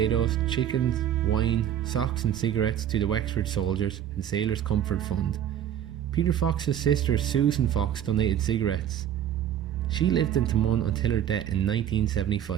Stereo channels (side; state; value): left; quieter; 10.2 dB